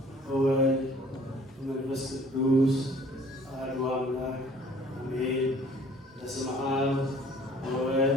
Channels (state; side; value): normal; both; correlation 0.54